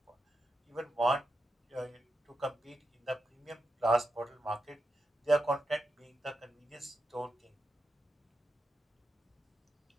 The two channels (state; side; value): normal; both; correlation 0.88